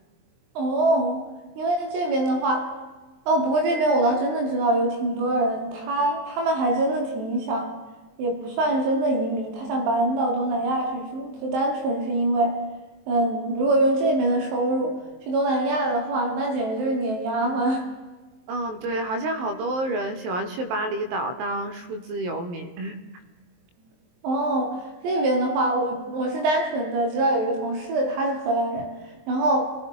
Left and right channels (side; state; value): left; late; 23 ms